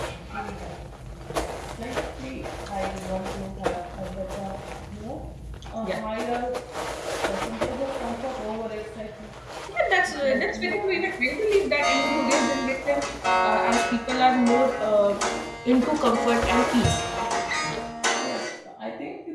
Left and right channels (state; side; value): identical; both; correlation 1.00